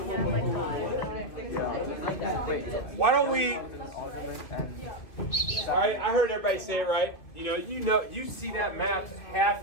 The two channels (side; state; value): right; late; 2.3 ms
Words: why don't we? All right, I heard everybody say it right. You see that map,